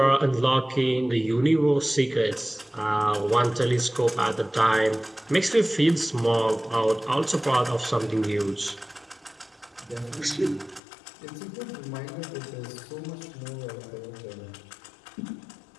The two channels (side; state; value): right; drops out; at 10.8 s